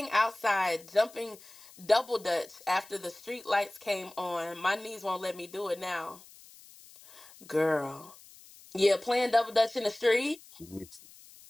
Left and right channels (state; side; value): noise; left; hiss, 22 dB below the sound